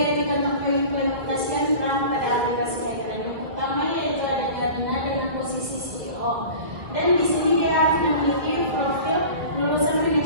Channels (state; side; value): late; left; 1.9 ms